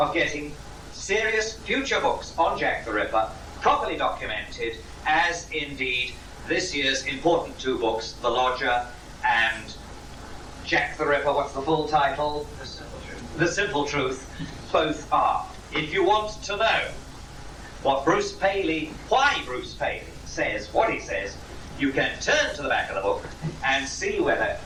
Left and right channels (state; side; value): identical; both; correlation 1.00